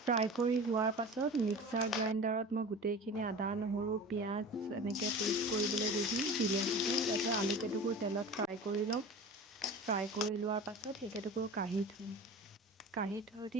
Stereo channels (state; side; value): normal; both; correlation 0.35